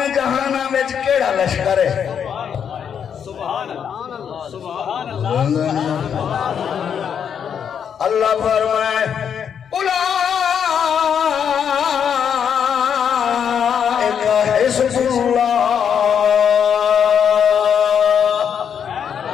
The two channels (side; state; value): right; quieter; 7.9 dB